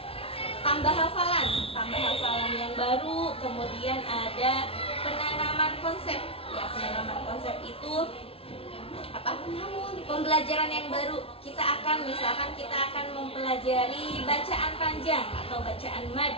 tambah hafalan yang baru, kemudian ada penanaman konsep ya. Penanaman konsep itu pembelajaran yang baru. Misalkan kita akan mempelajari bacaan panjang atau bacaan mad.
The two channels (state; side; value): late; right; 0.27 ms